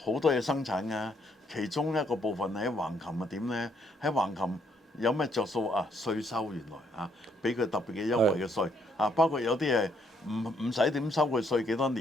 多嘢生產㗎，其中一個部分喺橫琴點呢？喺橫琴有咩着數稅收原來俾佢特別嘅優惠嘅稅包括有啲係唔使點收佢稅幾多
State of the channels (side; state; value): both; normal; correlation 0.71